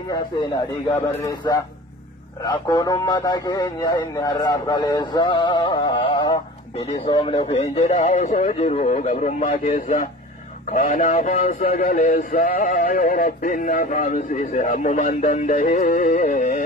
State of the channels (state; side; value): normal; both; correlation 0.38